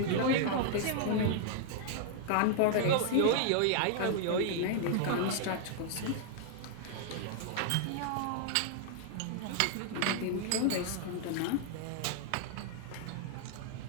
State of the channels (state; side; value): different; both; correlation -0.01